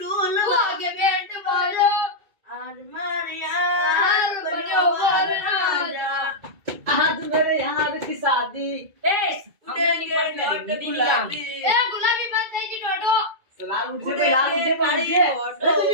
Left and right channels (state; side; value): late; left; 2.2 ms